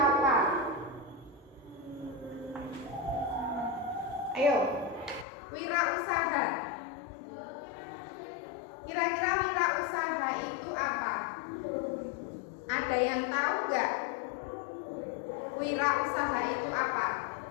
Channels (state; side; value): drops out; right; at 5.2 s